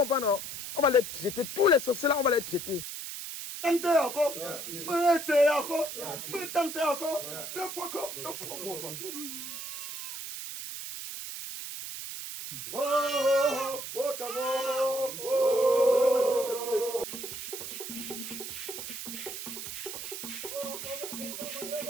non? On va les jeter. Tous les sorciers là, on va les jeter. Tentez encore. Essayez encore. Tentez encore. Le fois encore. Oh,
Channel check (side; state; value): right; noise; hiss, 7 dB below the sound